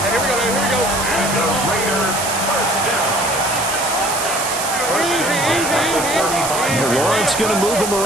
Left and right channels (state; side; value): noise; right; hiss, 4 dB below the sound